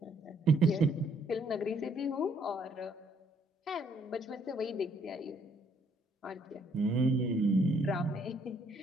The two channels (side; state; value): both; normal; correlation 0.67